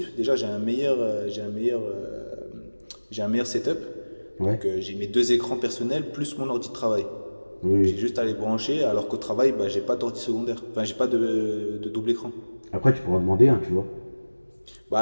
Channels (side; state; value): both; inverted; correlation -1.00